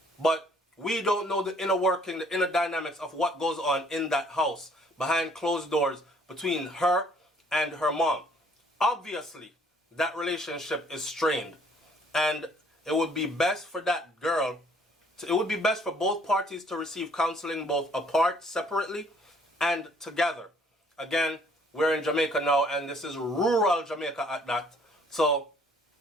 But We don't know the inner working, the inner dynamics of what goes on in that house, behind closed doors, between her and her mom. Obviously, that relationship is strained. And it would be best for that girl, it would be best for both parties to receive counseling both apart, separately, and together. Again, we're in Jamaica now, and this is rural Jamaica at that. So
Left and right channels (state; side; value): normal; both; correlation 0.61